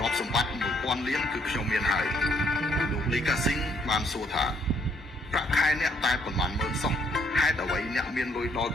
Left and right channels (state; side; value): normal; both; correlation 0.68